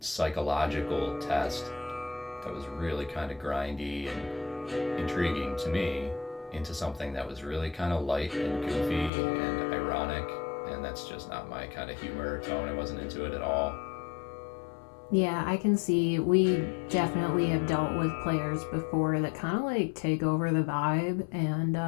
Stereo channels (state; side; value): drops out; right; at 9.1 s